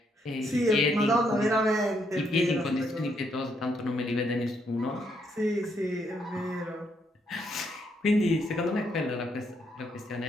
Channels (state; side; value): normal; both; correlation 0.75